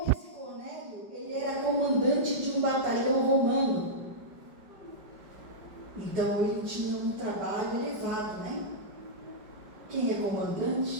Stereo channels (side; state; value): left; late; 5.3 ms